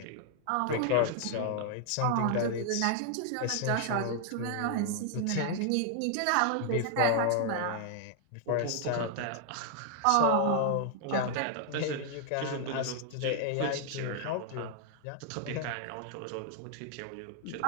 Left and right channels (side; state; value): both; different; correlation 0.00